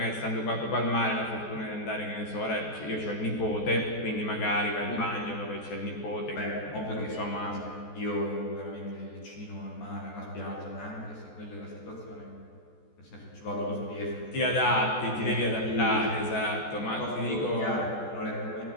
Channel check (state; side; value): late; right; 14 ms